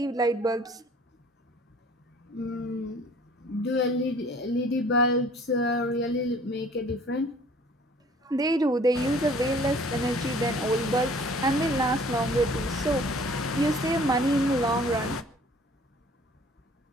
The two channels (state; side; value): normal; both; correlation 0.53